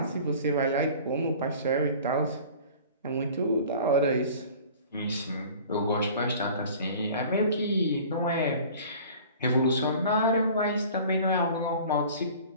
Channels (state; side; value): inverted; both; correlation -0.44